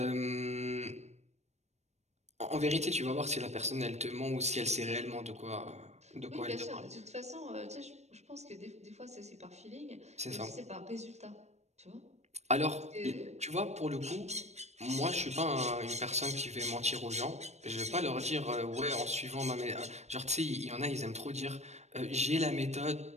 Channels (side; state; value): left; late; 0.32 ms